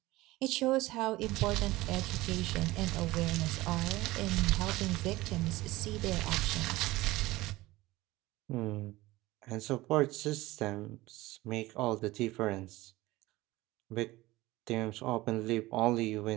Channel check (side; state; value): left; quieter; 19.0 dB